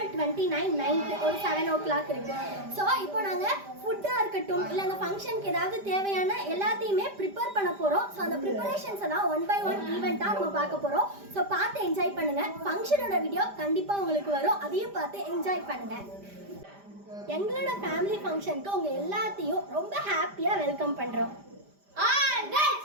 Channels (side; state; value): left; late; 5.0 ms